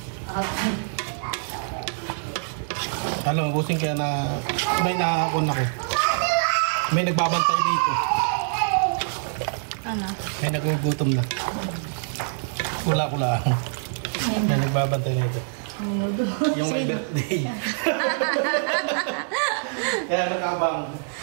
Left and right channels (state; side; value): silent; left; digital silence